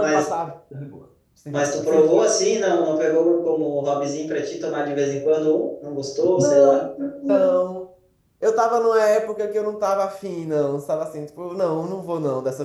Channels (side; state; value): both; identical; correlation 1.00